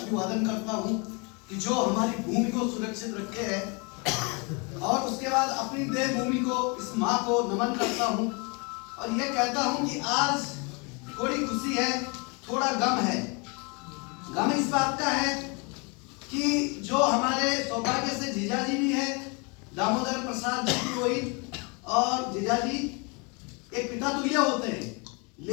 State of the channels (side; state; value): right; quieter; 31.6 dB